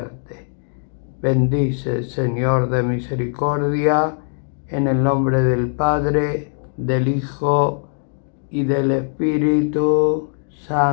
Bendice, Señor de misericordia, en el nombre del Padre, del Hijo y del Espíritu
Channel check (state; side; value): silent; right; digital silence